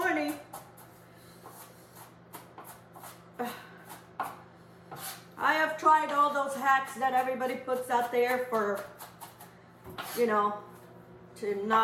I have tried all those hacks that everybody puts out there for, to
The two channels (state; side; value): identical; both; correlation 1.00